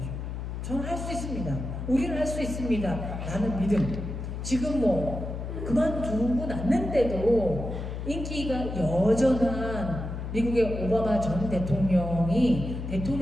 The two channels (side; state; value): left; noise; hum, 6 dB below the sound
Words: 저는 할 수 있습니다. 우리는 할 수 있습니다. 라는 믿음. 지금 뭐 그만두고 났는데도 인기가 여전한 미국의 오바마 전 대통령이